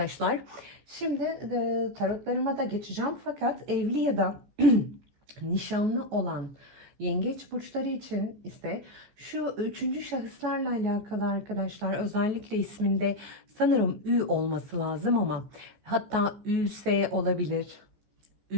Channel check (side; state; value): left; late; 15 ms